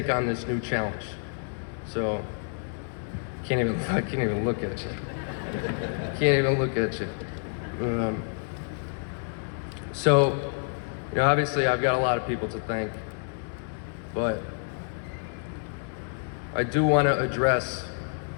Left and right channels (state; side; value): silent; right; 59 dB below the other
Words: on this new challenge. So, I can't even look at you. Can't even look at you. So, you know, obviously I've got a lot of people to thank, but I do want to address